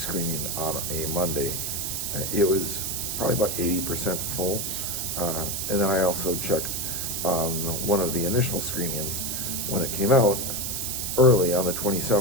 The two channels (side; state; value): right; noise; hiss, 2 dB below the sound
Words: on a Monday. It was probably about 80% full. And then I also checked on one of the initial screenings when it came out early on the